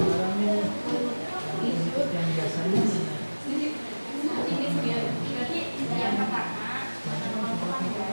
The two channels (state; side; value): inverted; both; correlation -1.00